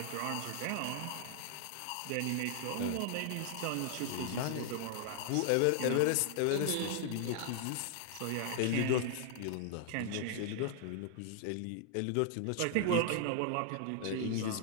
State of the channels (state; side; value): different; both; correlation 0.00